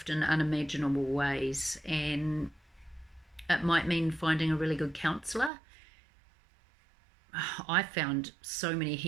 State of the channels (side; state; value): left; drops out; at 5.5 s